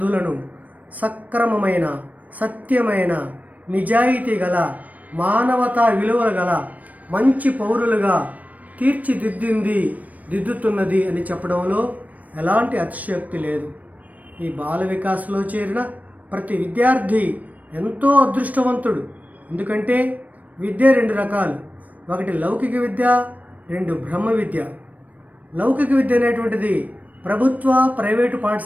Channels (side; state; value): left; late; 0.073 ms